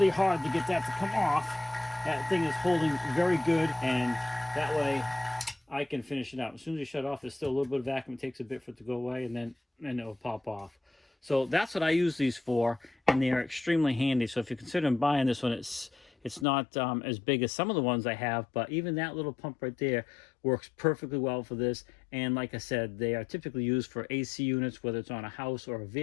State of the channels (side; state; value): right; drops out; at 16.4 s